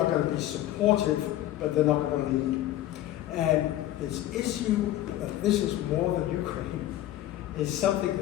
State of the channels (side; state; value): right; quieter; 13.9 dB